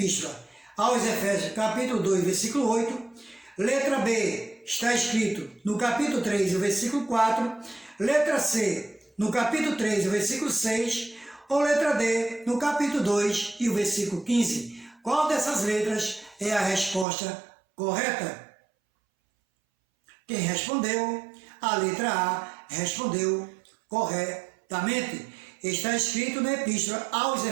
aos Efésios, capítulo 2, versículo 8. Letra B. Está escrito no capítulo 3, o versículo 4. Letra C. No capítulo 3, o versículo 6. Ou letra D. No capítulo 2 e o versículo 15. Qual dessas letras é a resposta correta? Quem respondeu? A letra A respondeu corretamente. Está escrito na Epístola aos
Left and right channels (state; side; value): drops out; left; at 17.1 s